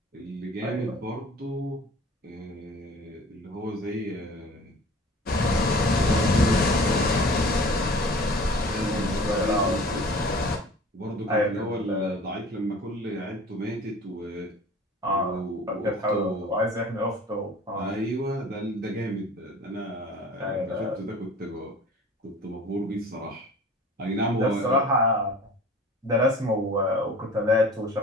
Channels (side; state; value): both; normal; correlation 0.43